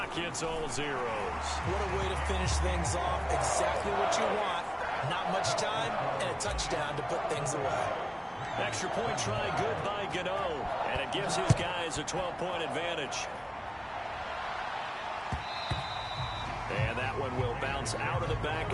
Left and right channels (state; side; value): identical; both; correlation 1.00